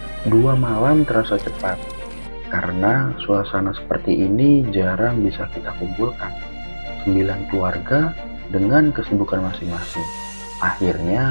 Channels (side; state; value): both; inverted; correlation -1.00